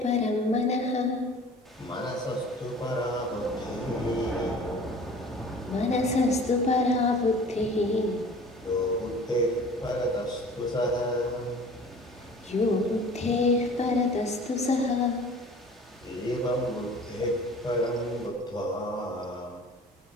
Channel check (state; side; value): normal; both; correlation 0.45